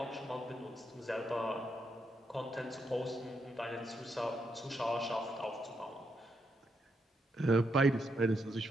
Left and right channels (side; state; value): both; normal; correlation 0.80